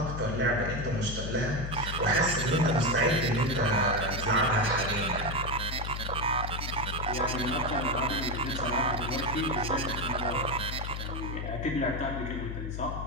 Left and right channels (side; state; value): left; noise; hum, 5 dB below the sound